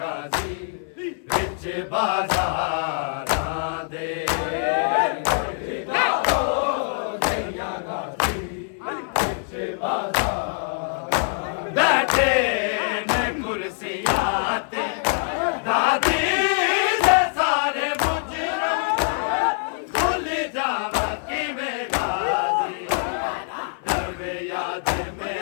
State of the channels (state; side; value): silent; right; 59 dB below the other